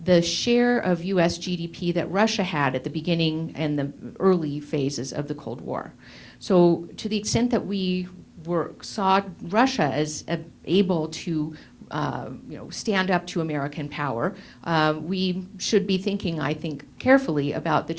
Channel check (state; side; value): identical; both; correlation 1.00